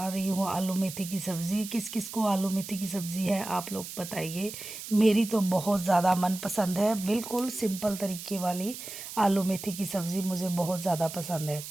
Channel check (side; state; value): right; noise; hiss, 10 dB below the sound